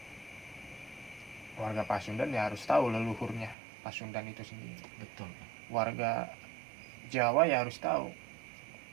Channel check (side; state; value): left; drops out; at 3.6 s